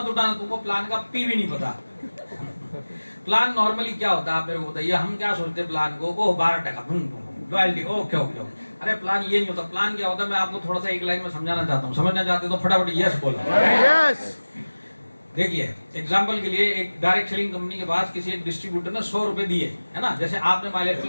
उठाना, तुमको प्लान का पी भी नहीं पता। प्लान नॉर्मली क्या होता है आप मेरे को बताइए, हम क्या सोचते हैं प्लान को 12% रॉयल्टी, ओके ओके। अरे प्लान ये नहीं होता। प्लान क्या होता है मैं आपको थोड़ा सा एक लाइन में समझाना चाहता हूँ, समझना चाहते तो फटाफट यस बोलो। यस। देखिए एग्जाम्पल के लिए एक डायरेक्ट सेलिंग कंपनी के पास किसी एक डिस्ट्रीब्यूटर ने 100 रुपए दिए, है ना, जैसे आपने माइलेस्टल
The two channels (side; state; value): both; inverted; correlation -1.00